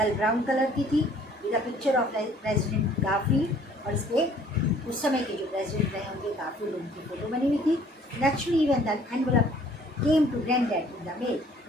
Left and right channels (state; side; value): normal; both; correlation 0.57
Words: ब्राउन कलर की थी, with a picture of President Garfield, और इस पर उस समय के जो प्रेसिडेंट रहे होंगे काफ़ी लोगों की फोटो बनी हुई थी। Naturally when the envelope came to granddad in the mail,